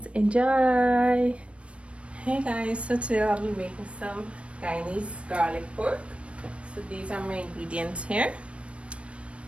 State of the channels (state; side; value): late; left; 0.061 ms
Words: enjoy. Hey guys, so today I'll be making some Guyanese garlic pork. So these are my ingredients here.